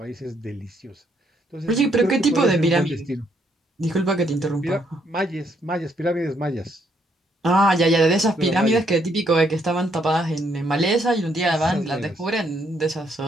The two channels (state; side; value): normal; both; correlation 0.72